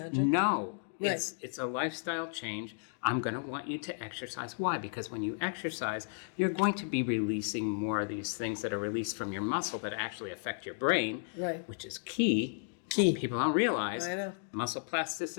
No. Right. It's a lifestyle change. I'm going to want you to exercise. Why? Because when you exercise, you're going to be releasing more of these things that are released from your muscle that actually affect your brain, Right. which is key. Key. People don't realize I know. muscle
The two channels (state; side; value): silent; right; digital silence